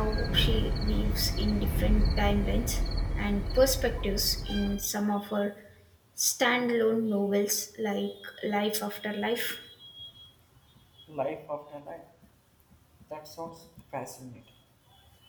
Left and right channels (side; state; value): both; identical; correlation 1.00